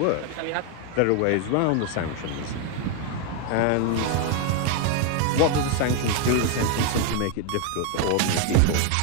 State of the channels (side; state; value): both; different; correlation 0.01